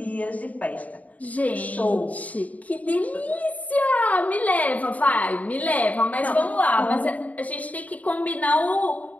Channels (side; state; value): right; late; 0.072 ms